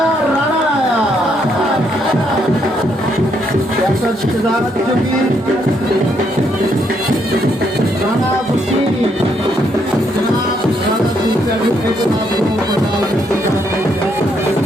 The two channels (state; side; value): normal; both; correlation 0.74